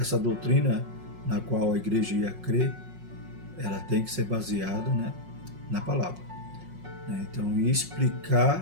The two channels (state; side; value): late; left; 5.5 ms